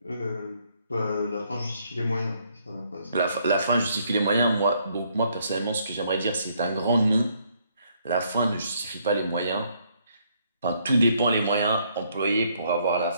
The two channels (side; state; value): both; inverted; correlation -0.69